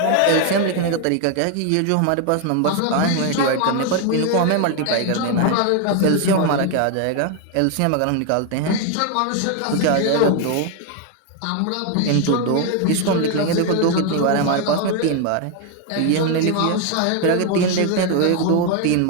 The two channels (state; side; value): different; both; correlation 0.01